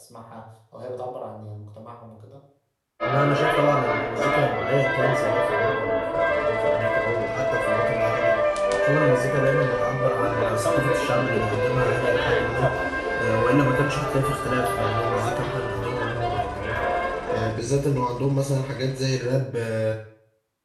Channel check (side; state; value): both; identical; correlation 1.00